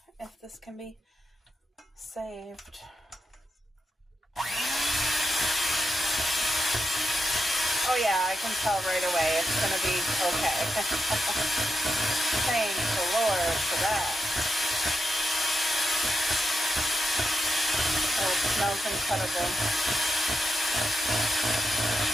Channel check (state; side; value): normal; both; correlation 0.85